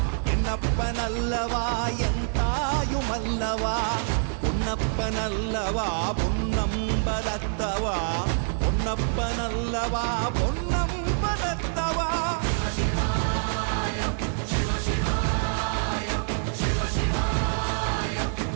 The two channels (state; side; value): silent; left; 61 dB below the other